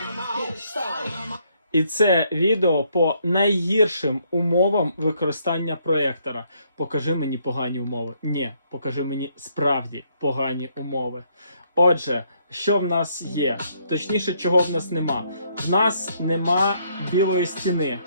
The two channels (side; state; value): both; inverted; correlation -0.70